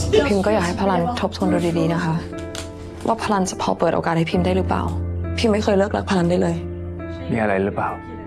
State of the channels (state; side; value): identical; both; correlation 1.00